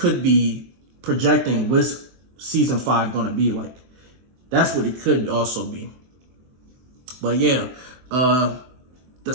be projecting what's season 5 going to be like. That's what it could also be. But yeah, the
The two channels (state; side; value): late; left; 23 ms